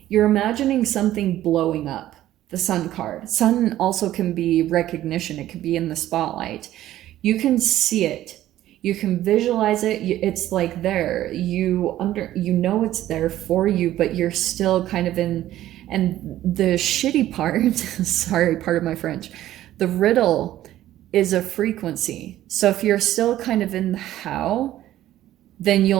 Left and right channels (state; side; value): quieter; left; 13.6 dB